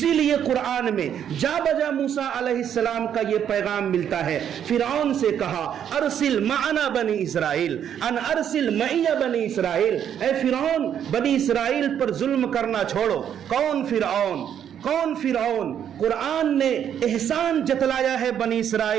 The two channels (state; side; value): quieter; left; 9.2 dB